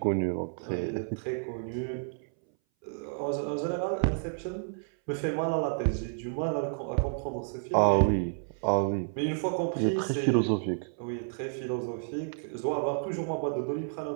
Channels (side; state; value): left; silent; 57 dB below the other